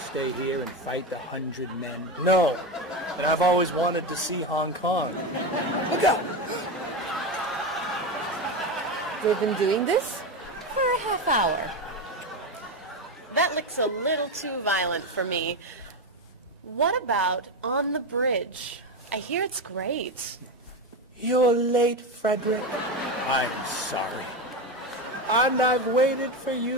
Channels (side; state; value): both; normal; correlation 0.16